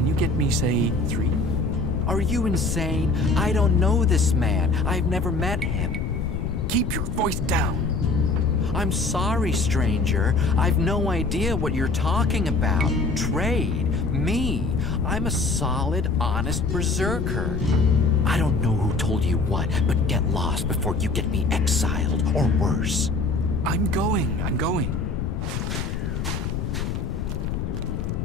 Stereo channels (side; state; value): left; noise; rumble, 3 dB below the sound